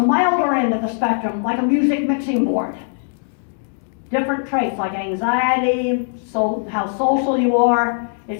milder end of the spectrum, like a music mixing board. Different traits like anxiety, how social you are.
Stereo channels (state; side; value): silent; right; digital silence